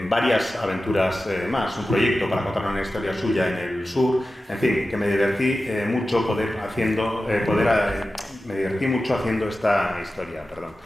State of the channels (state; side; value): normal; both; correlation 0.94